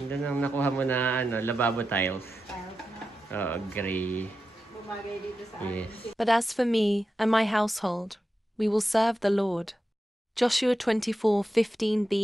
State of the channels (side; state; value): both; normal; correlation 0.90